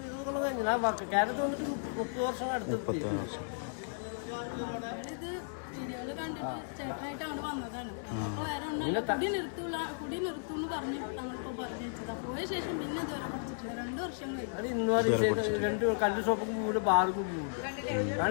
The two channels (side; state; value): right; silent; digital silence